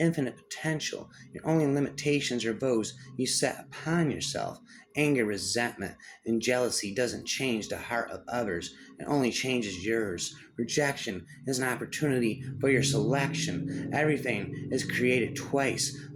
potential. Your only limitations are those you set upon yourself. Anger, resentment, and jealousy doesn't change the heart of others. It only changes yours. Rejection is an opportunity for your selection. Everything is created twice,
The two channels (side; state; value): both; identical; correlation 1.00